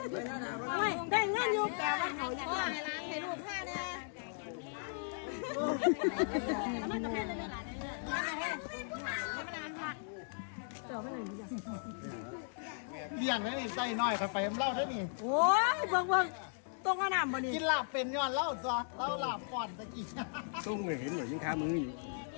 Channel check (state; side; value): silent; right; digital silence